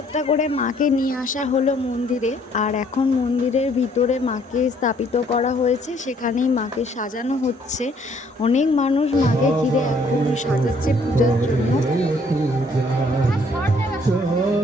করে মাকে নিয়ে আসা হলো মন্দিরে, আর এখন মন্দিরের ভিতরে মাকে স্থাপিত করা হয়েছে, সেখানেই মাকে সাজানো হচ্ছে। অনেক মানুষ মাকে ঘিরে এখন সাজাচ্ছে পূজার জন্য।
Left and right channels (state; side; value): normal; both; correlation 0.63